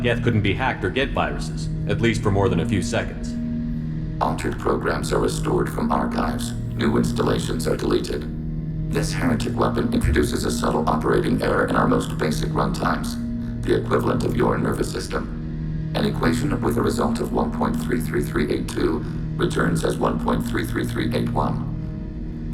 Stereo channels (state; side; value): identical; both; correlation 1.00